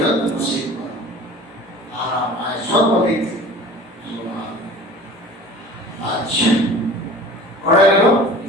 নসিব করো, আরাম আয় সর্বদিক থেকে। আচ্ছা, পড়ে গেল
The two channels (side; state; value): both; normal; correlation 0.42